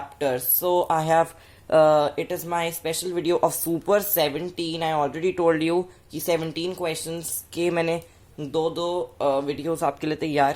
So I have it is my special video of Super 17. I already told you कि 17 questions के मैंने दो वीडियोस आपके लिए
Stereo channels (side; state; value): both; identical; correlation 1.00